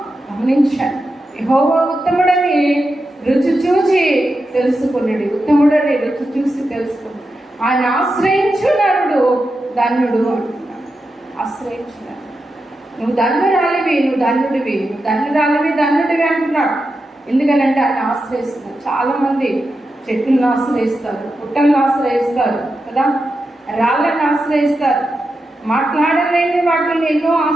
గమనించాను. యెహోవా ఉత్తముడని రుచి చూసి తెలుసుకున్నాడు. ఉత్తముడని రుచి చూసి తెలుసుకున్నాడు. ఆయన ఆశ్రయించు నరుడు ధన్యుడు అంటున్నాడు. ఆశ్రయించున్నాడు. నువ్వు ధన్యురాలివి, నువ్వు ధన్యుడివి, నువ్వు ధన్యుడివి అంటున్నాడు. ఎందుకనంటే ఆయన ఆశ్రయిస్తున్నాడు. చాలా మంది చెట్లను ఆశ్రయిస్తారు, పుట్టలను ఆశ్రయిస్తారు కదా, రాళ్ళని ఆశ్రయిస్తారు, మాట్లాడలేని వాటిని ఎన్నో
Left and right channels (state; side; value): normal; both; correlation 0.89